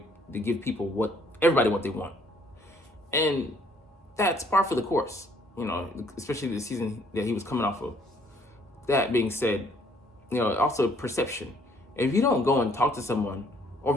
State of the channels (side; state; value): both; normal; correlation 0.63